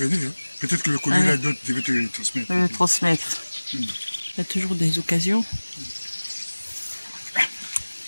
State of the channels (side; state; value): both; inverted; correlation -1.00